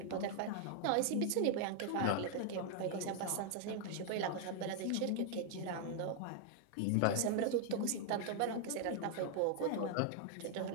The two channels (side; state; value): both; different; correlation 0.00